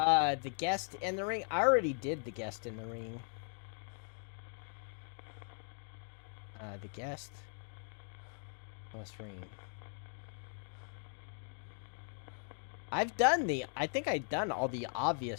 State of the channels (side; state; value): right; silent; 52 dB below the other